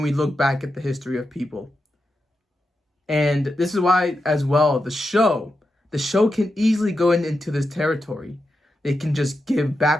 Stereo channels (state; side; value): normal; both; correlation 0.88